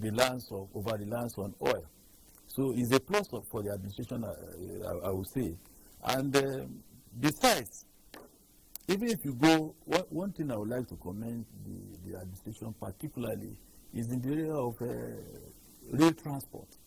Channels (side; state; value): both; identical; correlation 1.00